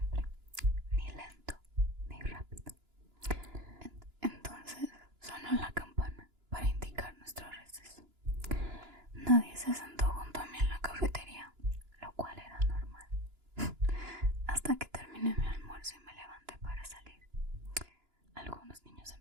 ni lento ni rápido. Entonces sonó la campana para indicar nuestro receso. Nadie se sentó junto a mí en la cafetería, lo cual era normal, hasta que terminé mi almuerzo y me levanté para salir. Algunos niños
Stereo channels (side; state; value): left; late; 2.9 ms